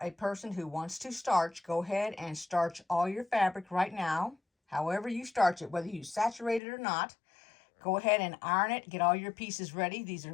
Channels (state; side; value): drops out; right; at 6.6 s